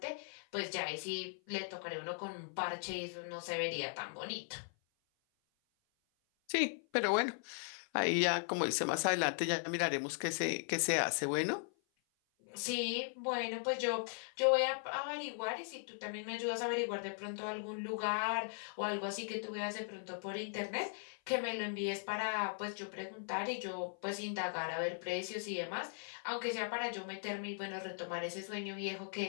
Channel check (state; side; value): silent; right; 52 dB below the other